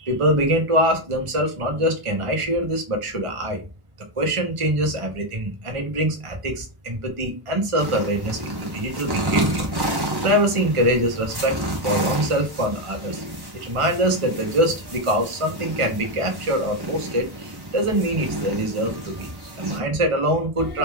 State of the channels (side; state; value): left; late; 1.1 ms